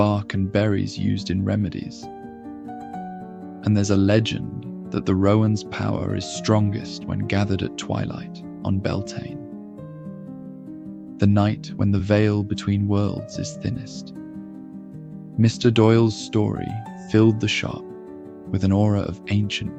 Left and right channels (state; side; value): identical; both; correlation 1.00